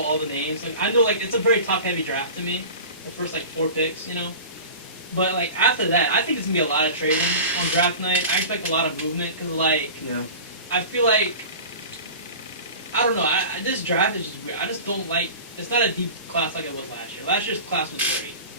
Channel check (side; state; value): both; inverted; correlation -0.36